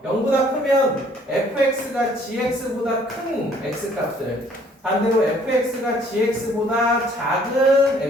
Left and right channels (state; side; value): normal; both; correlation 0.60